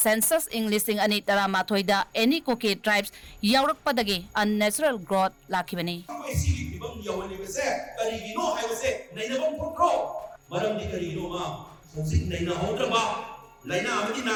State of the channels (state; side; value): identical; both; correlation 1.00